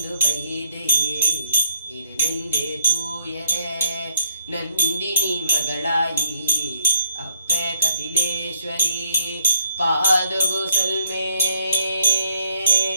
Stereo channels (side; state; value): both; inverted; correlation -0.67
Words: വൈദേ ഇരുനെന്റെ തൂയരേ. ನಂದಿನಿ ಮಗಳಾಯಿ ಅಪ್ಪೆ ಕಟಿಲೇಶ್ವರಿ ಪಾದಗು ಸಲ್ಮೆ